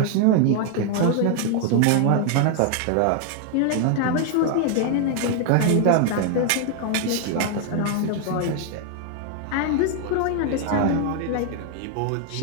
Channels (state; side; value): different; both; correlation 0.00